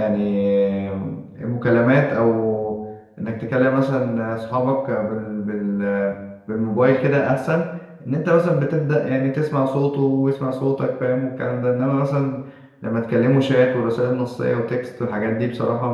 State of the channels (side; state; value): both; identical; correlation 1.00